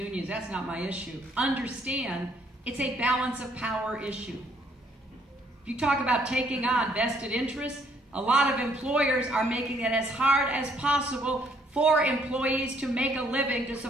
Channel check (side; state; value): both; normal; correlation 0.66